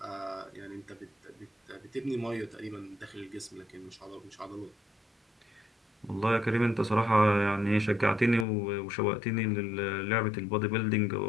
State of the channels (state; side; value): drops out; right; at 8.5 s